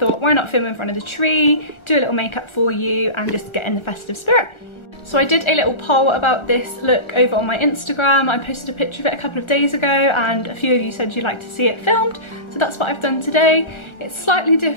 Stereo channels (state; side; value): late; right; 1.4 ms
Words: why not film in front of the tree, do a little makeup for you and just get in the festive spirit. So I did a little poll about this look over on my Instagram. I posted a picture of it a couple of days ago and a few of you said you'd like to see it filmed. So that's what I've done today. It's slightly